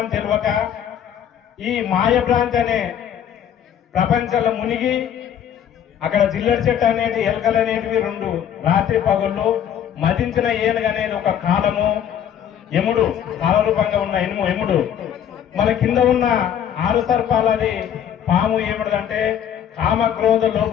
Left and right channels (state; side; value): quieter; right; 9.5 dB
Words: తెలియక ఈ మాయభ్రాంతి అనే ప్రపంచంలో మునిగి, అక్కడ జిల్లడి చెట్టు అనేది, ఎలకలు అనేటివి 2 రాత్రి పగుళ్ళు, మదించిన ఏనుగు అనేది ఒక కాలము, యముడు కాలరూపంగా ఉన్న యముడు, మన కింద ఉన్న 6 సర్పాలది పాము ఏమిటంటే కామ క్రోధ లోప